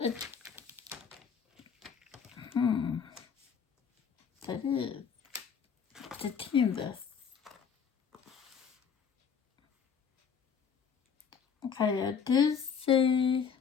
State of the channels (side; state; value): right; quieter; 6.8 dB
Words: That is the TAMMYS. Okay, I do see